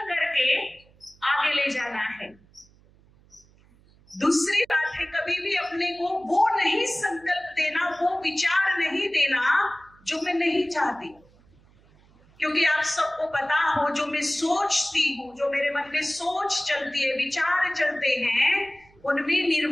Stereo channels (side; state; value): right; noise; hum, 29 dB below the sound